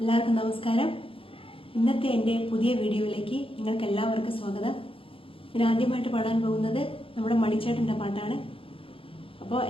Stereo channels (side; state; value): right; late; 0.26 ms